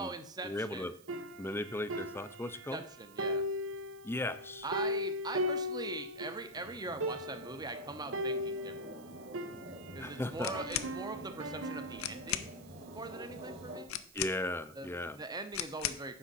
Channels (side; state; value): right; noise; hiss, 23 dB below the sound